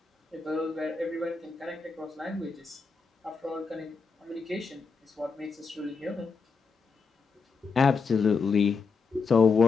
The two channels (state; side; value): quieter; right; 4.9 dB